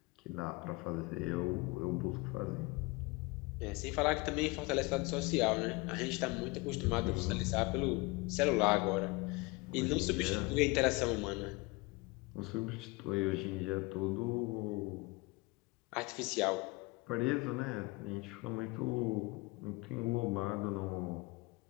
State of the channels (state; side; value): quieter; right; 25.0 dB